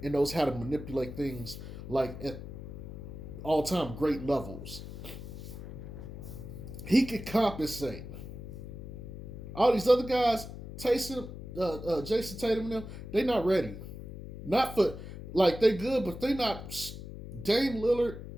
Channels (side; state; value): left; noise; hum, 11 dB below the sound